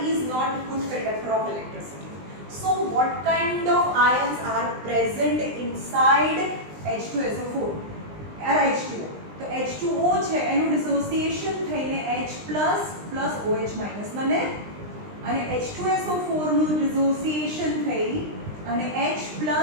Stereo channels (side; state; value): left; late; 20 ms